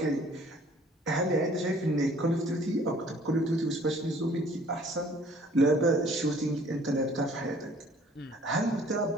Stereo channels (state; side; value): normal; both; correlation 0.55